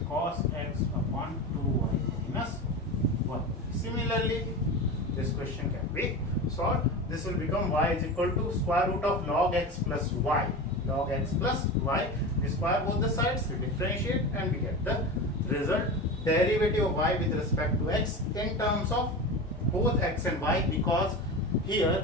cos x upon 2y minus 1. Similarly, this question can be solved. This will become y is equal to square root of log x plus y. Log x plus y. We square both the sides, we differentiate and we get the result. Derivative of y with respect to x in terms of both x and y, because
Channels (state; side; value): normal; both; correlation 0.27